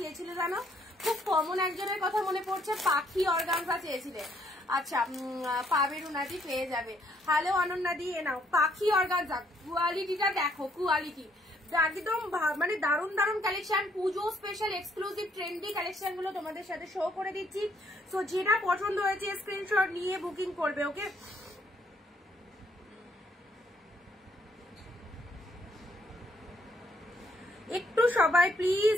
জানো, খুব কমন একজনের কথা মনে পড়ছে, পাখি অর্গানজা চেয়েছিলে। আচ্ছা পাবে রুনাদি, পেয়ে যাবে। হ্যালো অনন্যাদি, এ নাও পাখি অর্গানজা, কোয়ালিটিটা দেখো, কোয়ালিটি একদম মানে দারুন দারুন কালেকশন, পুজো স্পেশাল এক্সক্লুসিভ ট্রেন্ডি কালেকশন গুলো তোমাদের সাথে শো করে দিচ্ছি। সো যেটা পছন্দ হয়েছে স্ক্রিনশট নিয়ে বুকিং করবে। ওকে, একটু সবাই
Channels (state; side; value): normal; both; correlation 0.69